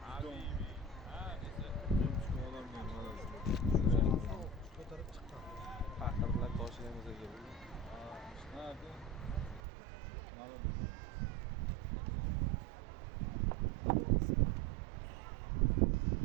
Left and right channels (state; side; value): drops out; left; at 9.6 s